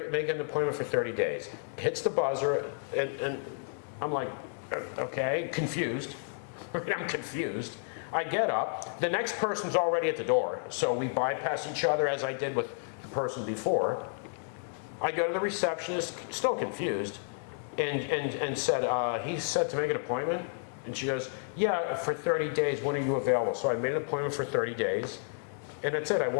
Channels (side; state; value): right; silent; digital silence